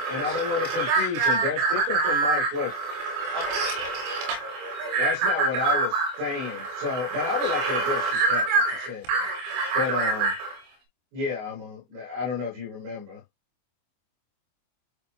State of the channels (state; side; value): late; left; 24 ms